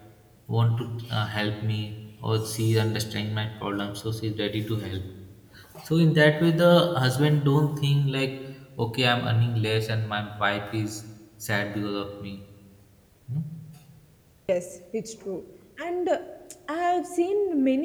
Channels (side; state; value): both; identical; correlation 1.00